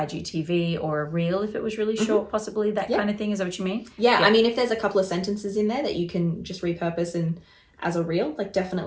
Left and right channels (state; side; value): identical; both; correlation 1.00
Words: or a reel if it was really short, possibly that kind of thing. Is that what you mean? Yeah, I mean, if there's a couple of sentences in there that you can just repurpose and as a reel, like